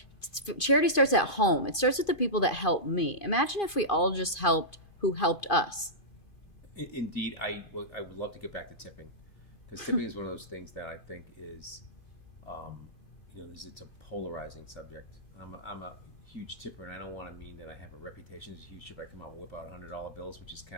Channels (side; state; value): right; late; 2.5 ms